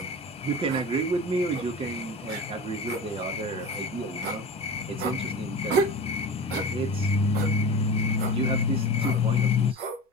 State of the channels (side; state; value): both; normal; correlation 0.33